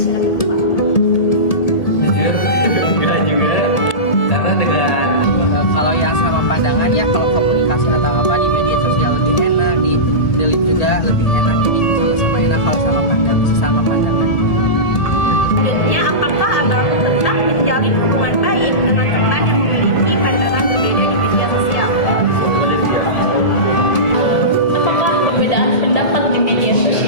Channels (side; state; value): right; late; 1.7 ms